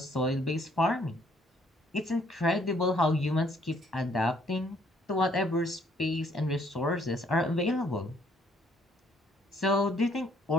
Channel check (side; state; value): both; normal; correlation 0.65